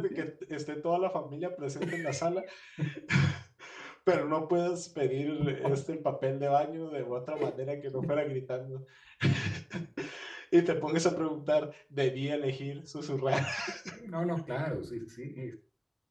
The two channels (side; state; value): both; identical; correlation 1.00